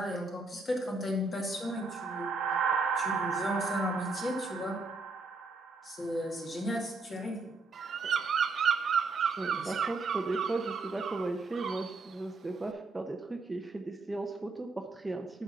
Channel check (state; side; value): quieter; left; 3.5 dB